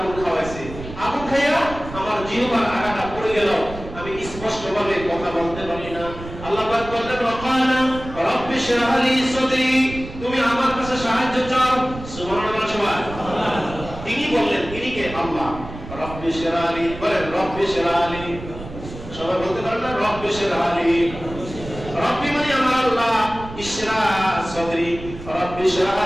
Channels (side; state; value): right; noise; rumble, 12 dB below the sound